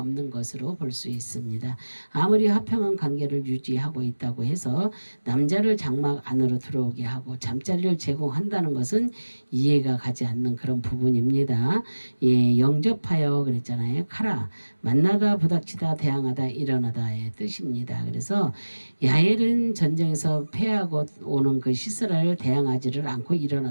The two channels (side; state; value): both; inverted; correlation -1.00